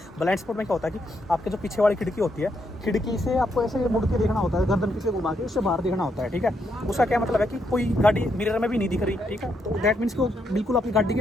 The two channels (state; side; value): normal; both; correlation 0.78